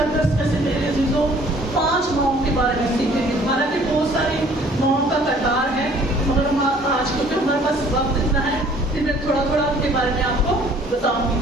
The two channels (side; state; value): both; normal; correlation 0.56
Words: میں سے میرے عزیزوں 5 ماؤں کے بارے میں سیکھیں گے. حالانکہ بہت ساری ماؤں کا کردار ہے مگر آج کیونکہ ہمارے پاس وقت اتنا ہے کہ میں تھوڑا تھوڑا ان کے بارے میں آپ کو بتاؤں